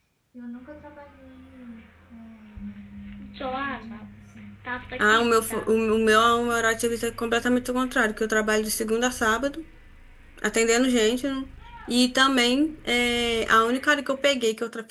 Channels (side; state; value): both; identical; correlation 1.00